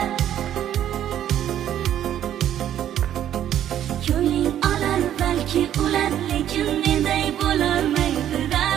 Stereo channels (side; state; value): left; quieter; 11.0 dB